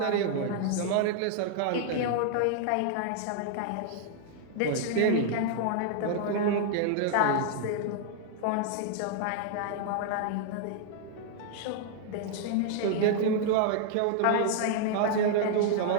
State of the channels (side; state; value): both; different; correlation 0.00